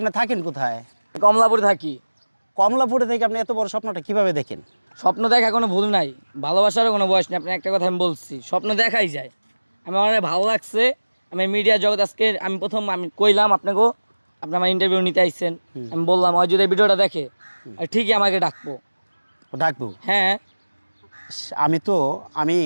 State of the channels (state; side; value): inverted; both; correlation -1.00